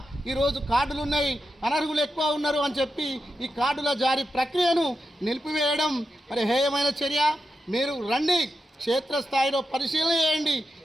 ఈరోజు కార్డులు ఉన్నాయి, అనర్హులు ఎక్కువ ఉన్నారు అని చెప్పి ఈ కార్డుల జారీ ప్రక్రియను నిలిపివేయడం మరి హేయమైన చర్య. మీరు రండి, క్షేత్రస్థాయిలో పరిశీలన చేయండి.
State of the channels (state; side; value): normal; both; correlation 0.88